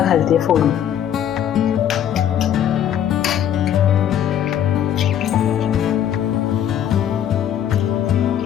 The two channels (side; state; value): right; quieter; 10.0 dB